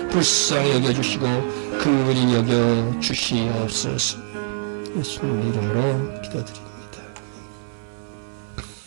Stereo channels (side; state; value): left; silent; 56 dB below the other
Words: 불쌍히 여겨주시고 긍휼히 여겨주시옵소서. 예수님 이름으로 기도드립니다.